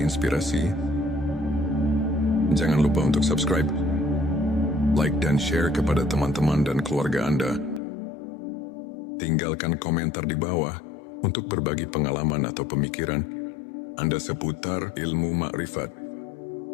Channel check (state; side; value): drops out; right; at 7.8 s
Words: inspirasi, jangan lupa untuk subscribe like dan share kepada teman-teman dan keluarga Anda. Tinggalkan komentar di bawah untuk berbagi pengalaman atau pemikiran Anda seputar ilmu makrifat.